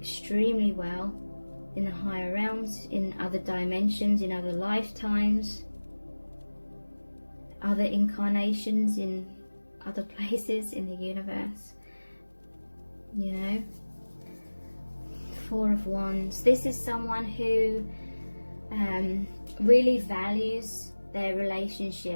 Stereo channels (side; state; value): both; inverted; correlation -1.00